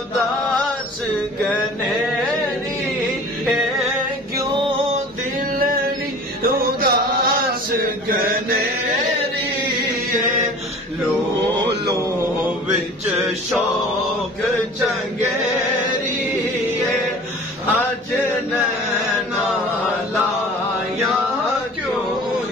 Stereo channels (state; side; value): normal; both; correlation 0.43